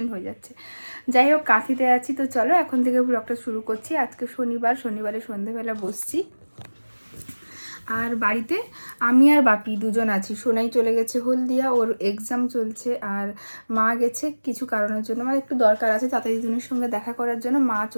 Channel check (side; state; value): both; inverted; correlation -1.00